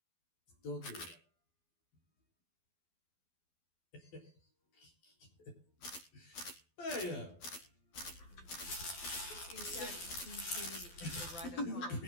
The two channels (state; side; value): late; right; 12 ms